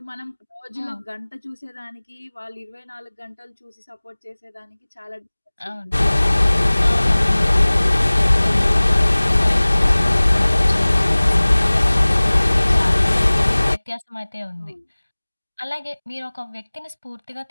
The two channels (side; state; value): both; inverted; correlation -1.00